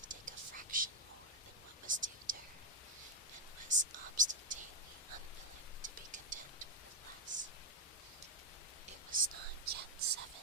take a fraction more than what was due to her, and was obstinately unwilling to be content with less. It was not yet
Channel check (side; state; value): both; normal; correlation 0.01